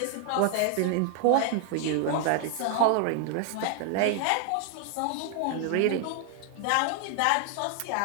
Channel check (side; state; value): both; different; correlation 0.00